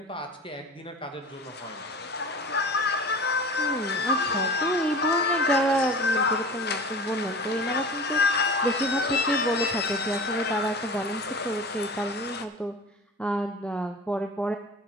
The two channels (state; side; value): normal; both; correlation 0.37